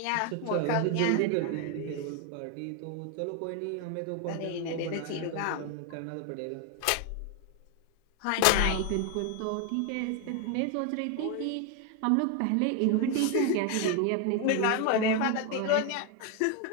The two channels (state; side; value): different; both; correlation 0.01